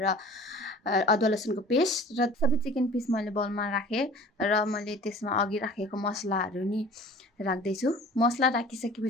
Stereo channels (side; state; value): both; normal; correlation 0.45